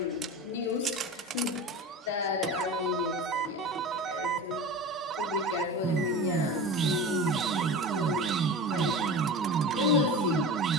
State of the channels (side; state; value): both; normal; correlation 0.31